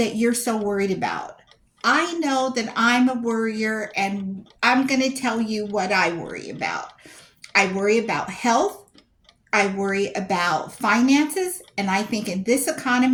you're so worried about. I know that I'm a worrier, and I'm going to tell you what I worry about. I worry about health. I worry about finances. And I think in this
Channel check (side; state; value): both; identical; correlation 1.00